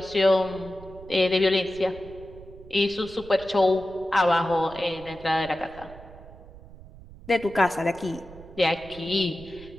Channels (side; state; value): right; noise; rumble, 19 dB below the sound